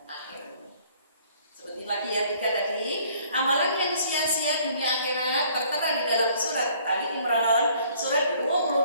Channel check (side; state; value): both; inverted; correlation -0.58